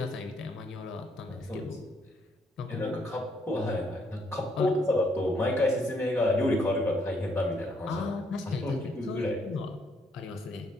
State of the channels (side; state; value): both; normal; correlation 0.71